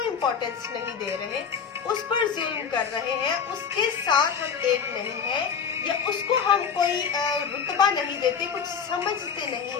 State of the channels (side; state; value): right; quieter; 6.8 dB